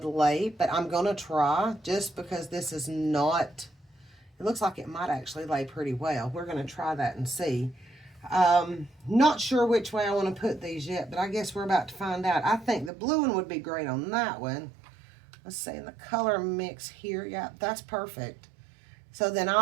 lay, but I'm going to try just because this is not, it looks like it might actually lay pretty well. We're going to try that and see. Not sure which way I want to put these yet, but I guess we're about to find out. I think the blue one would be great on that one. Let's see, in the color mix here, yeah, that's perfect. So then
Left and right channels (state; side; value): drops out; left; at 12.9 s